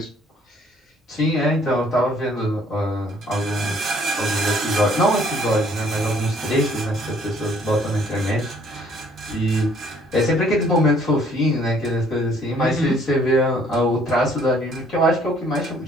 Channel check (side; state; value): both; normal; correlation 0.61